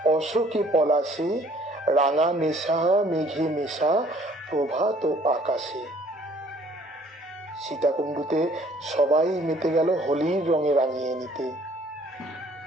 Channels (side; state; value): both; normal; correlation 0.58